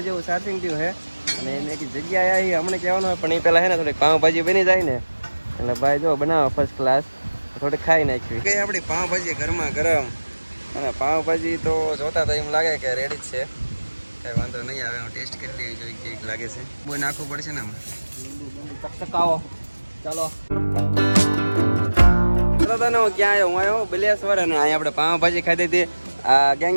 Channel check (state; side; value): inverted; both; correlation -1.00